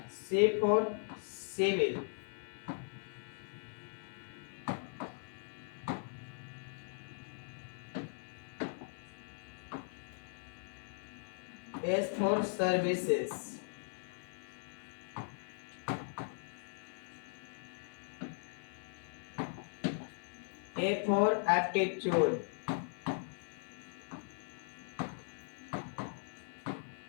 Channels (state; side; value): silent; right; 52 dB below the other